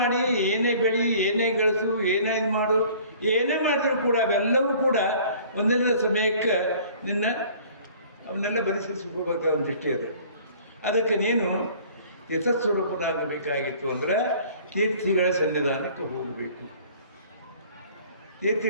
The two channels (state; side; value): inverted; both; correlation -0.51